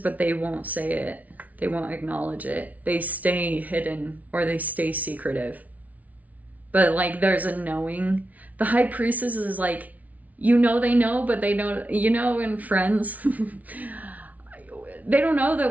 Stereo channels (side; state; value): left; late; 0.071 ms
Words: they won't say it. They won't acknowledge it. They stay hidden or they stay secretive. But like there's a knowing. The High Priestess is like, you know they know, but they don't, you know, in Friends. They don't know